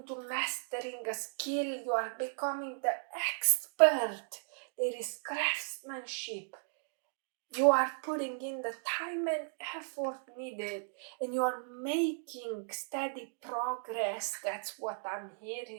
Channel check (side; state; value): left; silent; digital silence